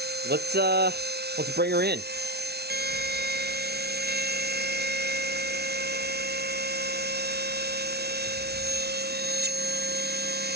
let's bring her in.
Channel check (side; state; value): left; late; 0.48 ms